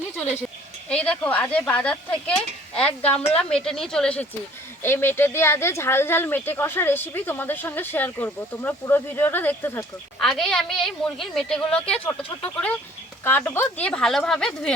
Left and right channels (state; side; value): normal; both; correlation 0.54